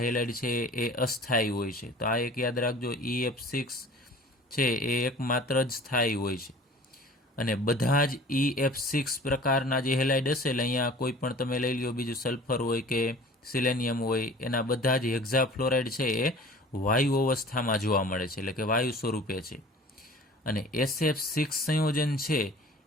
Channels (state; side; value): normal; both; correlation 0.45